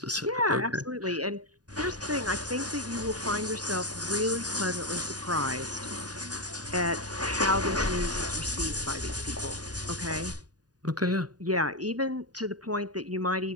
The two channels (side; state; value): left; late; 0.68 ms